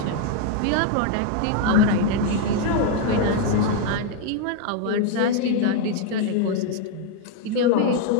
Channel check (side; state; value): both; different; correlation 0.00